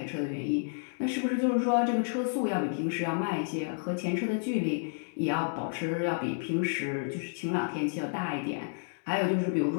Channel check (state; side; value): silent; right; digital silence